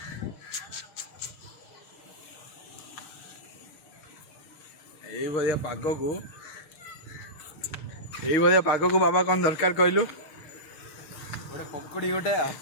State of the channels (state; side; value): late; right; 6.5 ms